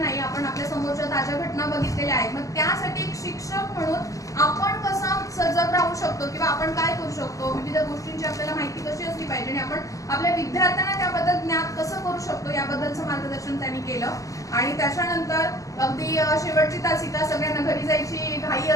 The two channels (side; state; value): right; late; 0.16 ms